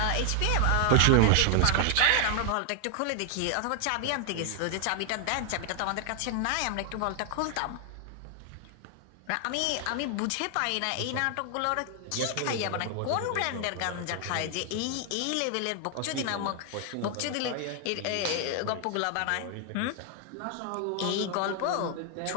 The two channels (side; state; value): both; different; correlation 0.00